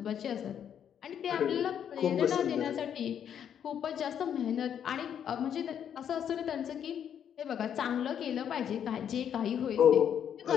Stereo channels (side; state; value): right; quieter; 8.9 dB